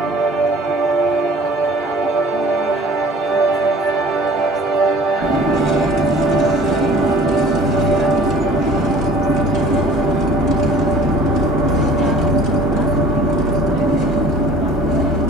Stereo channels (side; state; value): both; normal; correlation 0.49